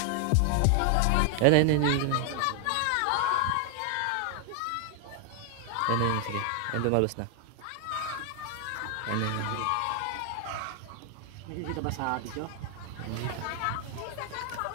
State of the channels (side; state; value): both; different; correlation 0.00